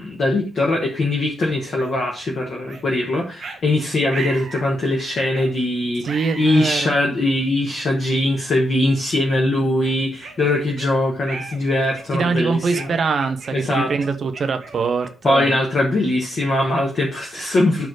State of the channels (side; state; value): both; normal; correlation 0.82